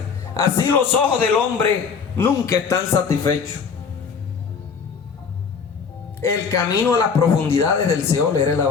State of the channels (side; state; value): right; quieter; 5.8 dB